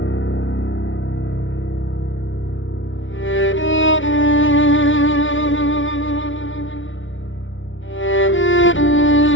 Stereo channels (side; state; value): right; late; 0.56 ms